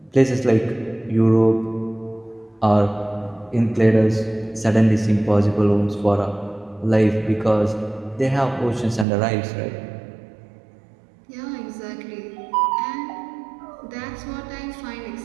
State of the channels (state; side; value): drops out; left; at 9.1 s